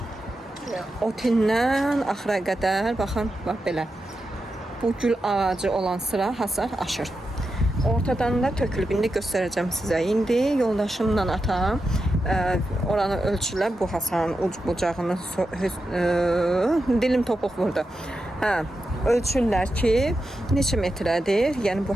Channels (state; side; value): normal; both; correlation 0.88